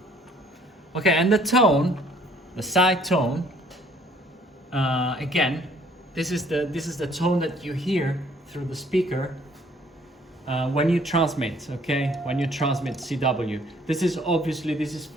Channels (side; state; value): both; normal; correlation 0.59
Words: Okay, and the tone, the side tone, again, this is the tone that you hear through the speaker when you transmit. Okay, when you transmit CW. This is